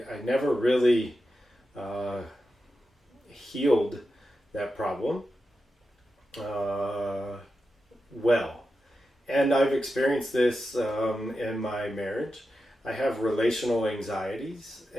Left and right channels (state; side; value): normal; both; correlation 0.90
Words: never really healed that problem well. And I've experienced this in my marriage. I have relational anxieties,